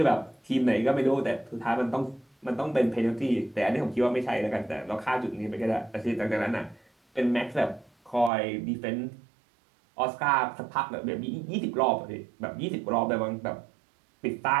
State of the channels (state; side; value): drops out; left; at 8.3 s